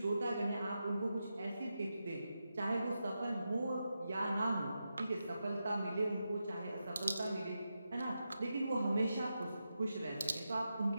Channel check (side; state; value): both; inverted; correlation -0.89